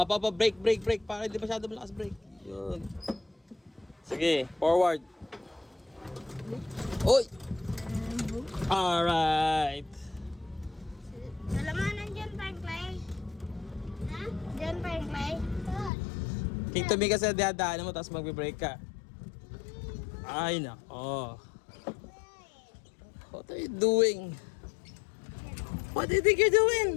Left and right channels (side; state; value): right; drops out; at 15.9 s